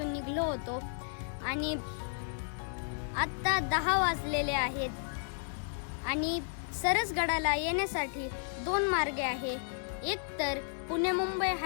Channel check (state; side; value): silent; right; digital silence